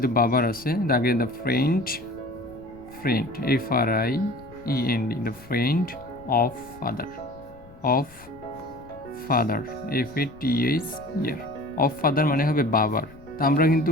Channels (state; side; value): noise; left; rumble, 22 dB below the sound